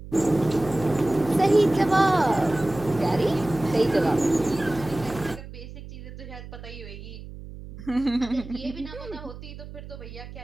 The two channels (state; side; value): noise; right; hum, 14 dB below the sound